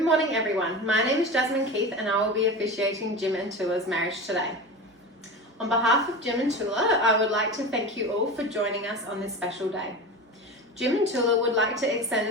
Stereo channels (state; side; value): normal; both; correlation 0.28